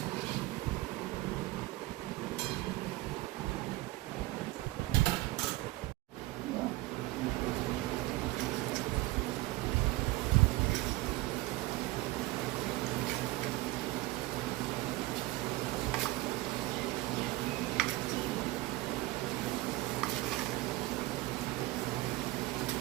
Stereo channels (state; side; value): quieter; left; 19.5 dB